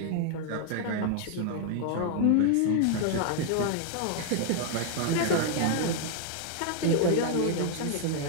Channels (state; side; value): different; both; correlation 0.00